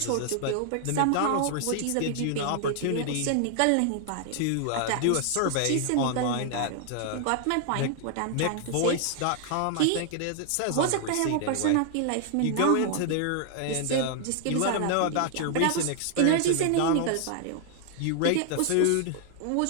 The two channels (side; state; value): both; different; correlation 0.00